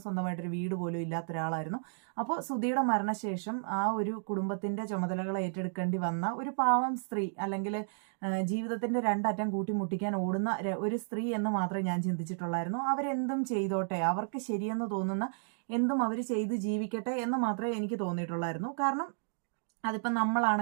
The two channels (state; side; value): silent; left; digital silence